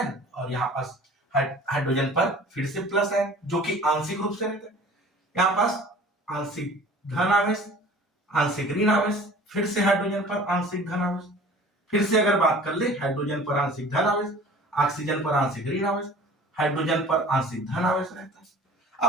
और यहां पास हाइड्रोजन पर फिर से प्लस आयन जो कि आंशिक रूप से रहता है, यहां पास आंशिक धन आवेश, आंशिक ऋण आवेश, फिर से हाइड्रोजन पर आंशिक धन आवेश, फिर से अगर बात कर ले हाइड्रोजन पर आंशिक धन आवेश, ऑक्सीजन पर आंशिक ऋण आवेश, हाइड्रोजन पर आंशिक धन आवेश रहता है।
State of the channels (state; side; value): normal; both; correlation 0.46